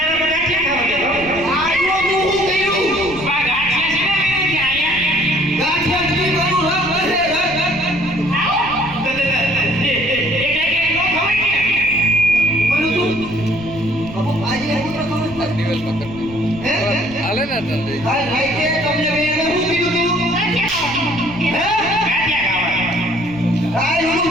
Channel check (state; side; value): noise; left; rumble, 16 dB below the sound